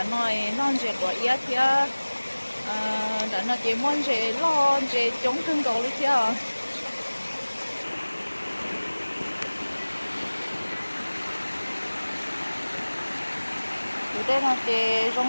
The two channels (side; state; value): both; inverted; correlation -1.00